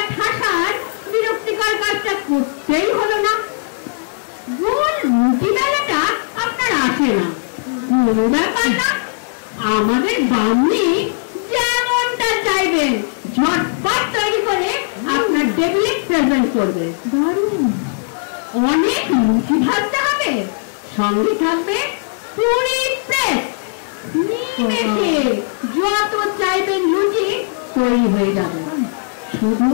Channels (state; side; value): silent; right; 66 dB below the other